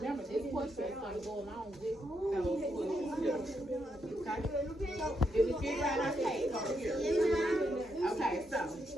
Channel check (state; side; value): normal; both; correlation 0.80